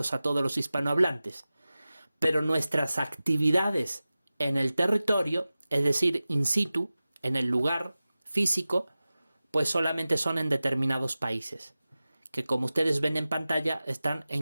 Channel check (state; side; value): inverted; both; correlation -0.96